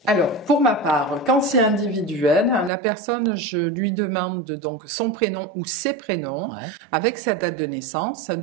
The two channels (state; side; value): drops out; left; at 2.7 s